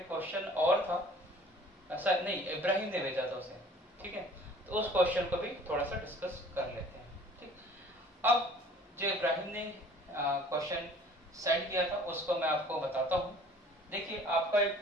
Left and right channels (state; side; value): normal; both; correlation 0.50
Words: क्वेश्चन और था, ऐसा नहीं, इब्राहिम ने भेजा था उसे, ठीक है। तो उस क्वेश्चन को भी थोड़ा सा डिस्कस कर लेते हैं, ठीक। अब जो इब्राहिम ने क्वेश्चन सेंड किया था उसको मैं आपको बताता हूँ। देखिए, आपका